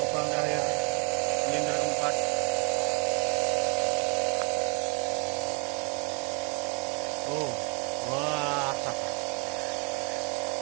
terakhir silinder keempat. Oh, wah.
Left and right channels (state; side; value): quieter; left; 33.3 dB